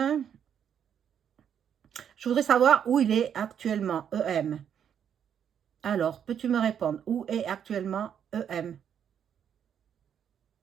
je voudrais savoir où il est actuellement, EM. Alors, peux-tu me répondre? Où est actuellement EM?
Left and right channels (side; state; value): left; quieter; 8.6 dB